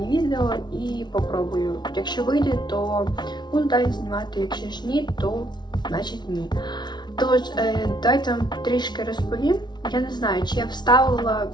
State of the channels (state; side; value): late; right; 0.20 ms